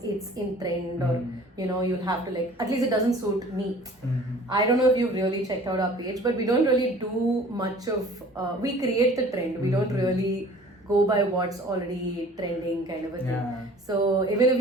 it's in trend, or you'll have to, like, at least it doesn't suit me. I don't know if you've really checked out our page, but we don't really do much of we create the trend. We don't really go by what's already trending, kind of a thing. Yeah. So even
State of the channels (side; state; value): both; normal; correlation 0.48